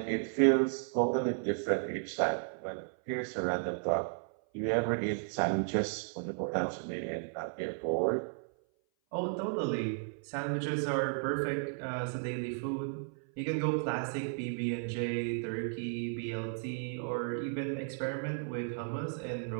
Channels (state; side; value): silent; left; 55 dB below the other